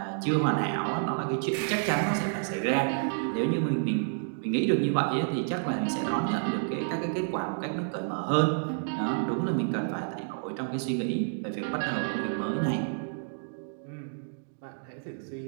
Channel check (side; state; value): left; silent; digital silence